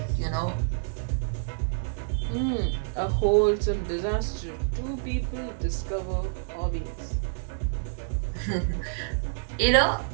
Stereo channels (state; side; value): silent; left; digital silence